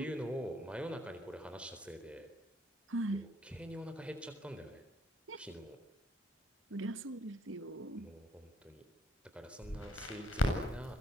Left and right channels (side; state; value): both; normal; correlation 0.68